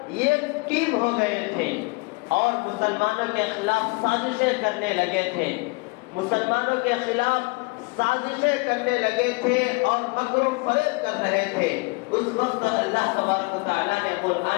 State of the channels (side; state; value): right; quieter; 27.8 dB